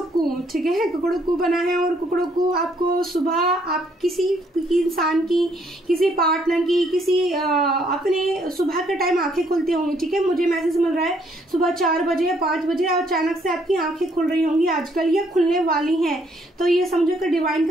ठीक है, कुकड़ुक्कू बना है। और कुकड़ुक्कू आपको सुबह आप किसी इंसान की, किसी पार्टनर की, किसी अपने सुबह के टाइम आंखें खुलती होंगी, ठीक है। मुझे मैसेज मिल रहा है सुबह 4 बजे या 5 बजे और अचानक से आपकी आंखें खुल रही होंगी आजकल, ये खुलने वाली हैं, तो ये समझो कि डिवाइन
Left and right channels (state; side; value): normal; both; correlation 0.68